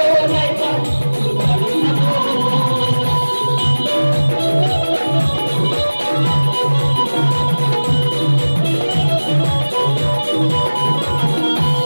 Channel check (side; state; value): both; inverted; correlation -1.00